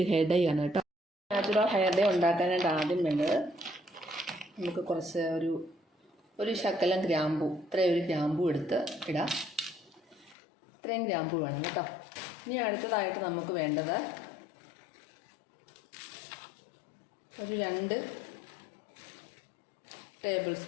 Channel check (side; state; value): right; drops out; at 10.4 s